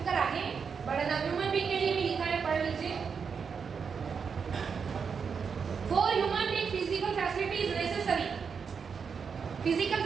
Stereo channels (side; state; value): left; quieter; 6.1 dB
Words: आगे बढ़ना। ह्यूमन बीइंग के लिए भी लिखा है, पढ़ लीजिए। For human being physical facility is necessary, physical